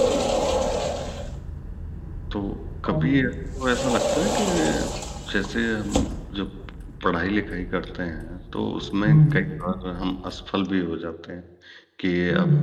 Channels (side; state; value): both; identical; correlation 1.00